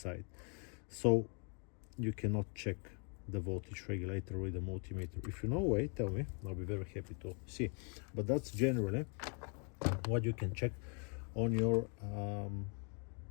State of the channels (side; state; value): right; quieter; 38.9 dB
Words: so you cannot check the voltage regulator with a multimeter. If you know a way, tell me, I'll be very happy to see. But that's generally what you can check on your